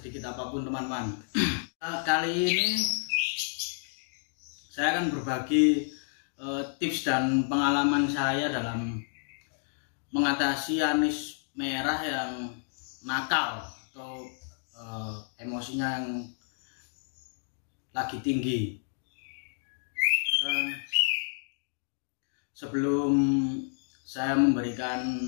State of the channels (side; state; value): right; silent; digital silence